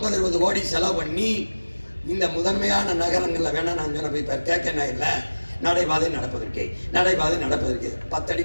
கோடி செலவு பண்ணி இந்த முதன்மையான நகரங்கள்ல வேணா நான் சொன்ன போய் கேட்க இல்லை. நடைபாதை நடப்பதற்கே 10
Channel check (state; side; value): inverted; both; correlation -1.00